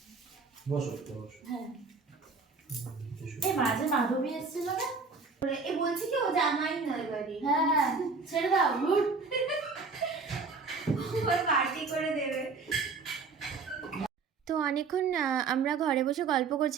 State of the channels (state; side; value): quieter; left; 4.5 dB